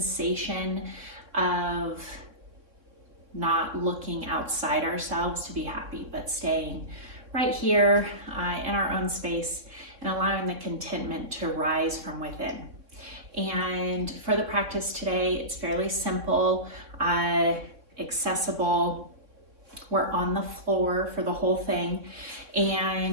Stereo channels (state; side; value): late; left; 3.6 ms